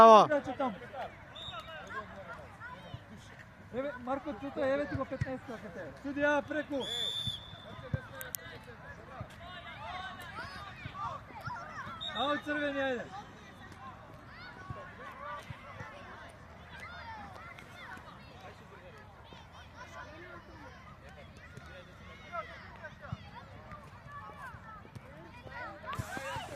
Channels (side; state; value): both; identical; correlation 1.00